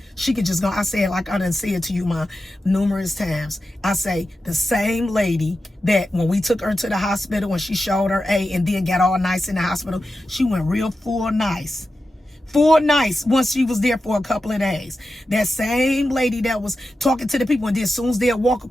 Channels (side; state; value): both; normal; correlation 0.91